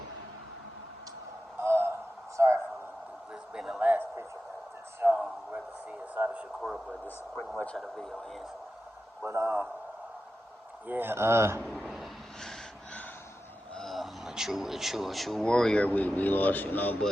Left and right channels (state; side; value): normal; both; correlation 0.92